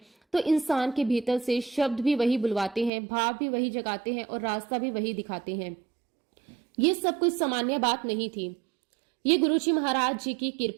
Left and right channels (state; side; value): drops out; left; at 2.9 s